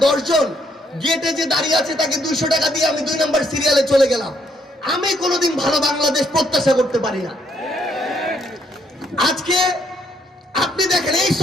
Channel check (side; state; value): both; normal; correlation 0.71